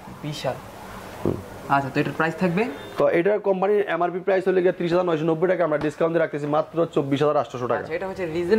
বিশাল। আচ্ছা তো এটার প্রাইস থাকবে, তো এটার কোম্পানির এমআরপি প্রাইস হলো 30,990 টাকা, আমরা ডিসকাউন্ট দিয়ে রাখতেছি মাত্র 24,800 টাকা। আচ্ছা এটা হচ্ছে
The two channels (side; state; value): both; identical; correlation 1.00